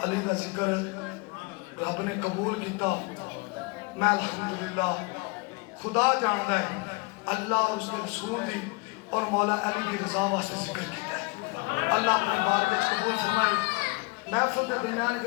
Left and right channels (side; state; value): right; quieter; 27.0 dB